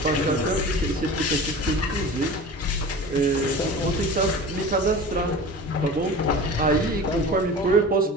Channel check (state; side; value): normal; both; correlation 0.36